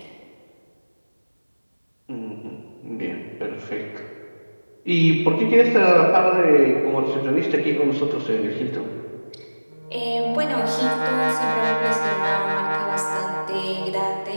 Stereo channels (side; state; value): both; inverted; correlation -1.00